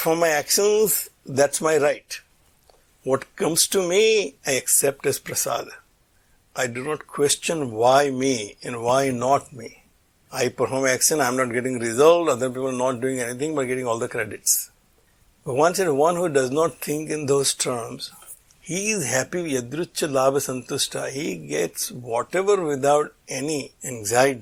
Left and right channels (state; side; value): identical; both; correlation 1.00